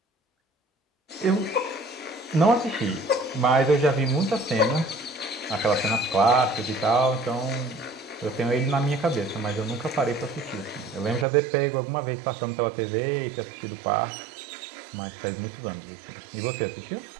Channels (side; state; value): left; drops out; at 11.2 s